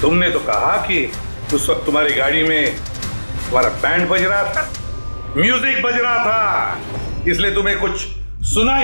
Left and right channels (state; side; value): inverted; both; correlation -1.00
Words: तुमने तो कहा कि उस वक्त तुम्हारी गाड़ी में तुम्हारा बैंड बज रहा था, म्यूजिक बज रहा था, इसलिए तुम्हें कुछ सुना